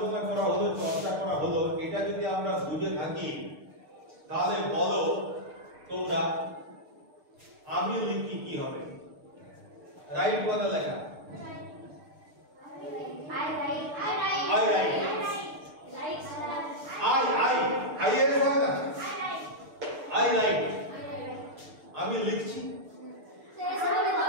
করা হলো, চর্চা করা হলো, এটা যদি আমরা বুঝে থাকি তাহলে বলো তোমরা আমি লিখি কি হবে? রাইট কথা লেখা, I এর হয় না, I write, আমি লিখছি,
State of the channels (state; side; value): late; left; 6.6 ms